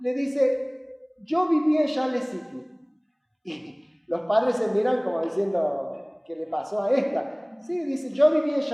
le dice, yo viví en Charles City. Y los padres se miran como diciendo, ¿qué le pasó a esta? Sí, dice, yo viví en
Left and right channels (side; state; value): both; identical; correlation 1.00